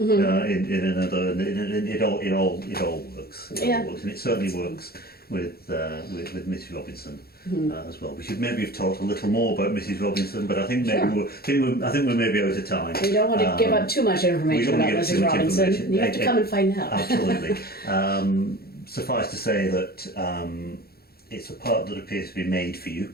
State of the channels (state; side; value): late; right; 0.45 ms